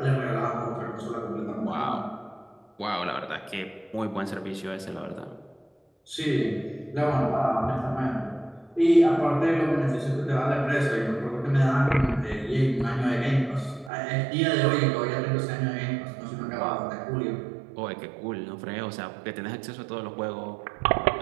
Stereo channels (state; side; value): drops out; left; at 13.9 s